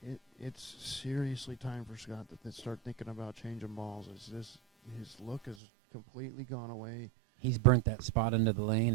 it's seriously time for Scott to start thinking about changing balls. His look has completely gone away. He's burnt that spot into the lane,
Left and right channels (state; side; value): drops out; left; at 5.6 s